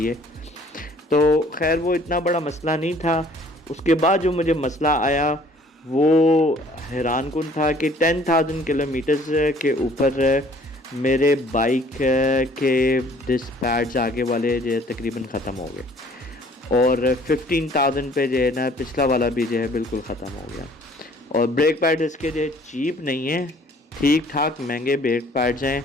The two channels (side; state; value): both; normal; correlation 0.56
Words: तो खैर वो इतना बड़ा मसला नहीं था। उसके बाद जो मुझे मसला आया वो हैरान कुन था कि 10,000 किलोमीटर्स के ऊपर मेरे बाइक के डिस्क पैड्स आगे वाले जो तकरीबन ख़त्म हो गए। और 15,000 पे जो है ना पिछला वाला भी जो है बिल्कुल ख़त्म हो गया। और ब्रेक पैड इसके जो है चीप नहीं है, ठीक ठाक महंगे ब्रेक पैड्स हैं।